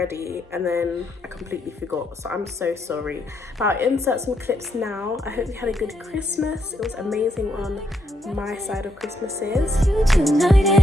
and then I completely forgot. So I'm so sorry. But I'll insert some clips now. I hope you had a good Christmas. It was amazing on my side of Christmases. It's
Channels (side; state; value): both; normal; correlation 0.77